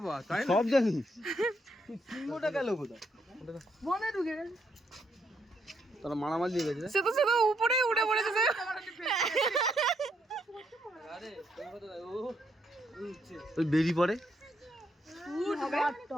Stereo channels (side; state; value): both; normal; correlation 0.75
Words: তাই সব জানি সিংহটা গেল কোথায় মনে ঢুকে গেল তারা মারামারি দিয়ে গেছে সে তো উপরে উঠে পড়েছে সে ওই বেরি পড়ে